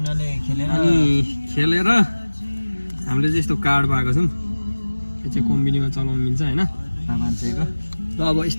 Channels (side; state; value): both; inverted; correlation -1.00